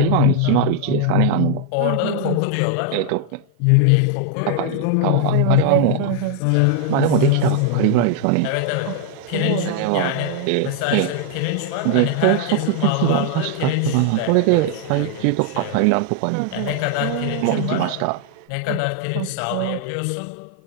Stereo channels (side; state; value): both; different; correlation 0.00